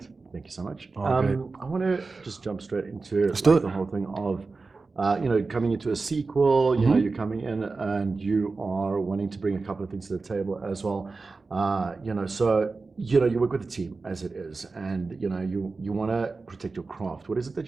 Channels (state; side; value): quieter; left; 4.0 dB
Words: Thank you so much. I want to just jump straight into like the whole thing of, coming into a sequel. You're coming in and you are wanting to bring a couple of things to the table as well. You work with a team as it is, and you want to protect your craft. What is